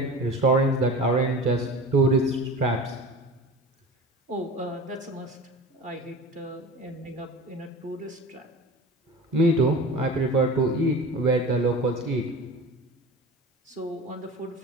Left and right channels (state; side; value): normal; both; correlation 0.35